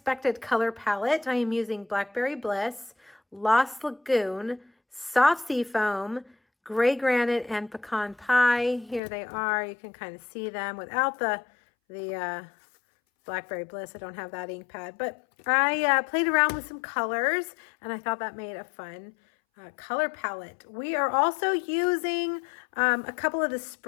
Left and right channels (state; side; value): drops out; right; at 9.0 s